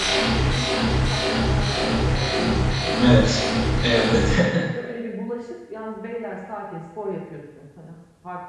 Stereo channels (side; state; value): both; identical; correlation 1.00